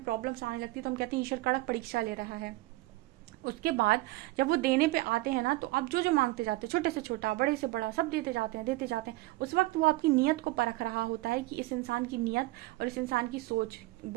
प्रॉब्लम्स आने लगती है तो हम कहते हैं ईश्वर कड़क परीक्षा ले रहा है। उसके बाद जब वो देने पे आते हैं ना, तो आप जो जो मांगते जाते हैं, छोटे से छोटा, बड़े से बड़ा, सब देते जाते हैं, देते जाते हैं। उस वक्त वो आपकी नियत को परख रहा होता है कि इस इंसान की नियत और इस इंसान की सोच,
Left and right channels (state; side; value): quieter; left; 20.0 dB